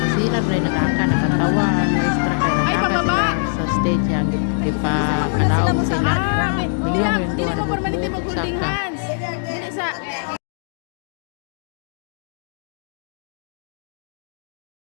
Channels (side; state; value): right; silent; digital silence